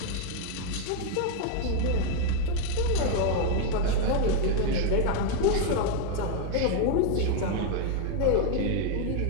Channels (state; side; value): different; both; correlation 0.01